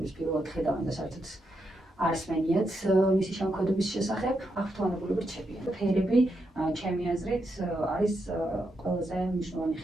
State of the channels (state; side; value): normal; both; correlation 0.83